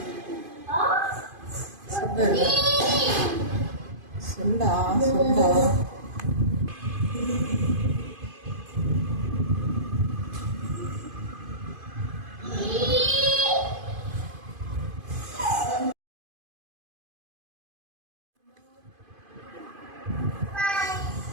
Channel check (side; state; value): left; late; 2.5 ms